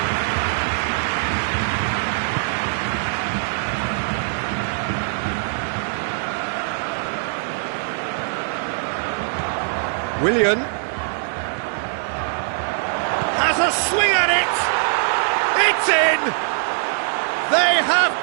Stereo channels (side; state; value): left; silent; digital silence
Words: Willian has a swing at it. It's in. They have